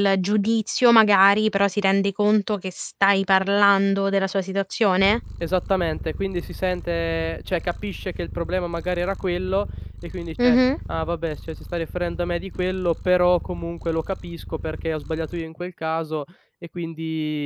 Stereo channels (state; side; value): identical; both; correlation 1.00